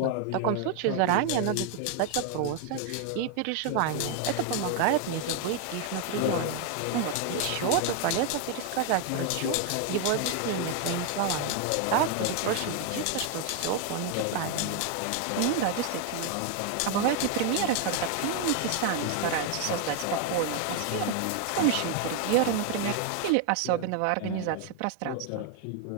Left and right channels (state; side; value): different; both; correlation 0.01